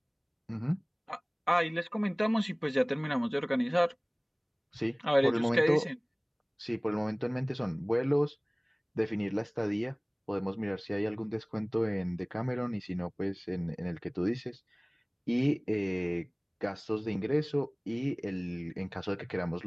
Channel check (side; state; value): both; identical; correlation 1.00